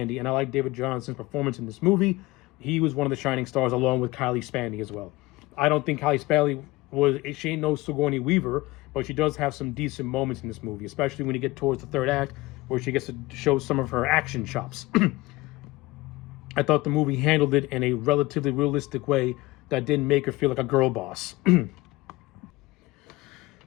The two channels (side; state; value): right; quieter; 20.3 dB